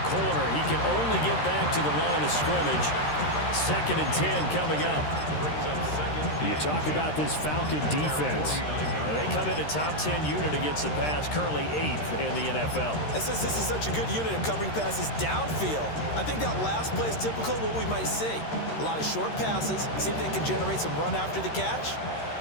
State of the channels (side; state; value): right; late; 13 ms